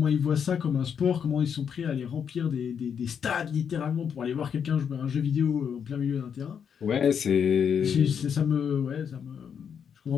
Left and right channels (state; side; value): quieter; right; 7.5 dB